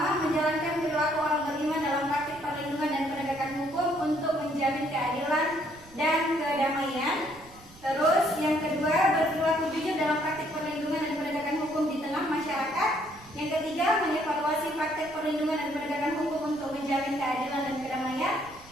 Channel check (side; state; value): right; noise; rumble, 23 dB below the sound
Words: menjalankan perilaku orang beriman dalam praktik perlindungan dan penegakan hukum untuk menjamin keadilan dan kedamaian. Terus yang kedua, berperilaku jujur dalam praktik perlindungan dan penegakan hukum di tengah masyarakat. Yang ketiga, mengevaluasi praktik perlindungan dan penegakan hukum untuk menjamin keadilan dan kedamaian.